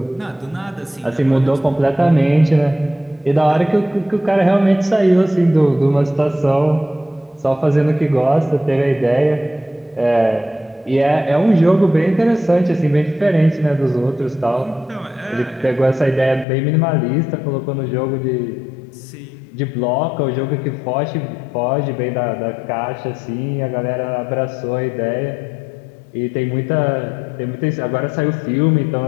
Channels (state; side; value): drops out; right; at 16.4 s